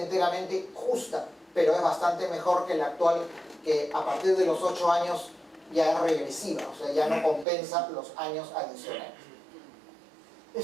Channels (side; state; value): left; drops out; at 7.5 s